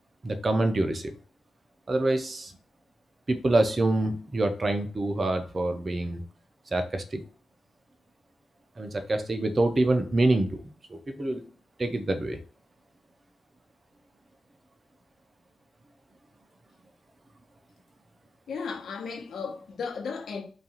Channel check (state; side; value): normal; both; correlation 0.94